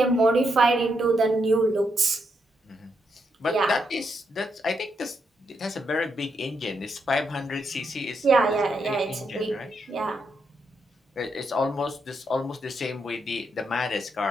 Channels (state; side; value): normal; both; correlation 0.80